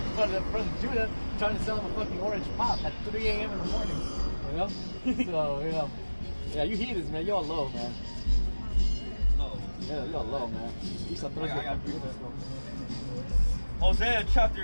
front of Judah trying to sell him a fucking orange pop at 3 a.m. in the morning. You know, so you know, yeah, you heathens, man. You're low, man. Low. Yeah, you're low, man. Esau throws I got Hosea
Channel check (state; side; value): inverted; both; correlation -1.00